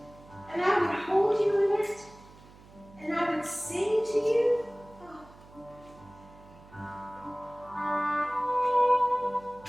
And I would hold you in it. And I would sing to you.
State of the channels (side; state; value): right; noise; hum, 22 dB below the sound